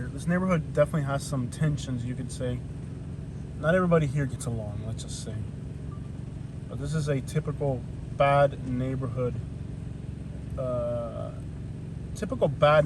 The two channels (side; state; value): both; identical; correlation 1.00